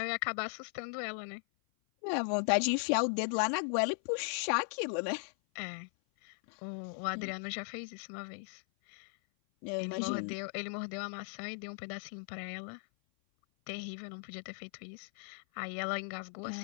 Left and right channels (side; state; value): right; silent; 53 dB below the other